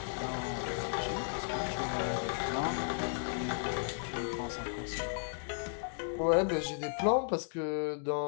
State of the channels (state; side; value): silent; right; digital silence